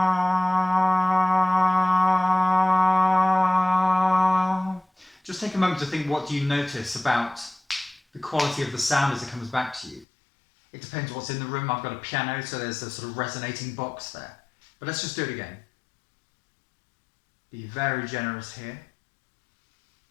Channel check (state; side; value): drops out; right; at 10.1 s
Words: Just take a moment to think, what do you notice about the quality of the sound as it comes back to you? It depends what's in the room. I've got a piano, so there's a sort of resonating box there. But let's just do it again. Be very generous here.